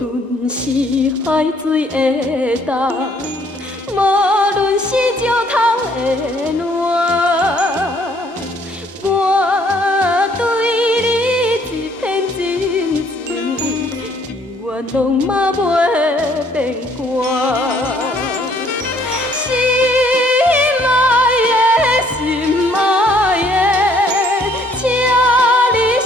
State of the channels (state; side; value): normal; both; correlation 0.63